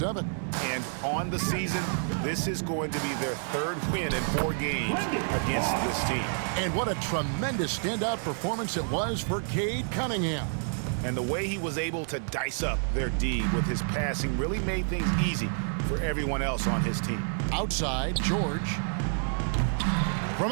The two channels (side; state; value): left; silent; 59 dB below the other